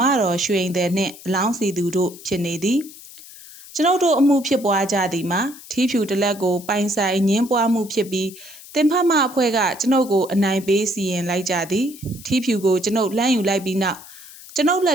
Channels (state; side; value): noise; left; hiss, 18 dB below the sound